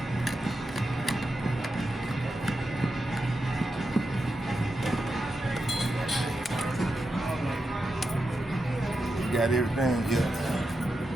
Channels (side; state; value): both; normal; correlation 0.88